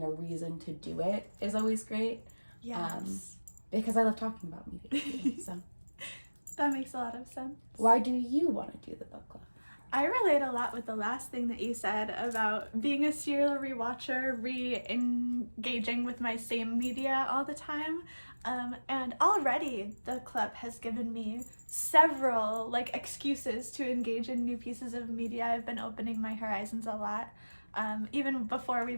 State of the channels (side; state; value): both; inverted; correlation -1.00